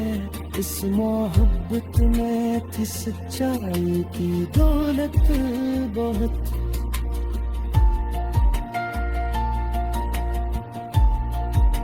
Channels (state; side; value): identical; both; correlation 1.00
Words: इस मोहब्बत में थी सच्चाई की दौलत बहुत।